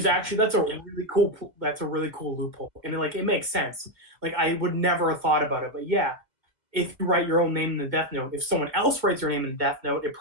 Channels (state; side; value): late; left; 2.1 ms